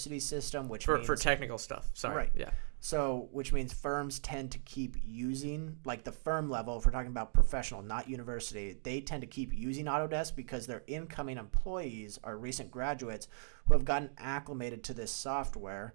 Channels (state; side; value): silent; left; digital silence